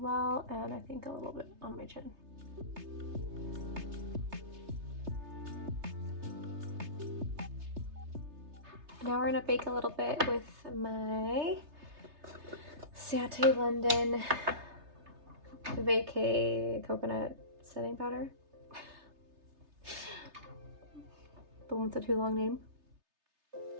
and I think a little bit on my chin. Now we're gonna bake a little bit with my Sate London Vacay Coconut Setting Powder. The one with the too long name.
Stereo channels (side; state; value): left; late; 3.3 ms